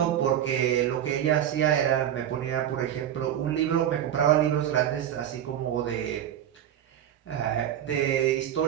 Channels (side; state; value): left; quieter; 10.6 dB